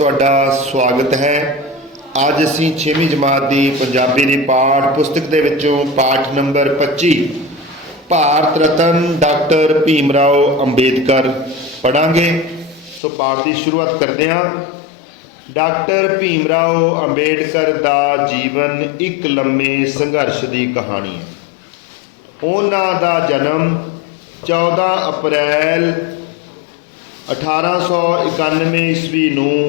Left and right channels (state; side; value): drops out; right; at 13.0 s